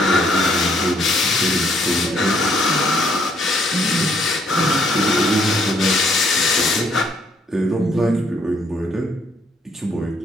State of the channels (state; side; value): normal; both; correlation 0.68